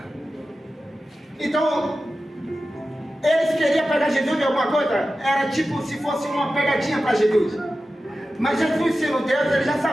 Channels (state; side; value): normal; both; correlation 0.93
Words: Então, eles queriam pegar Jesus de alguma coisa? Era tipo se fosse uma pegadinha para Jesus. Mas Jesus, sendo Deus, ele já